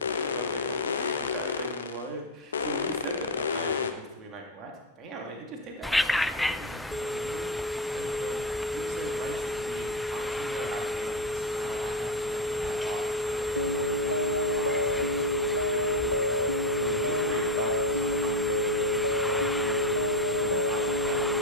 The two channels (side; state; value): both; normal; correlation 0.08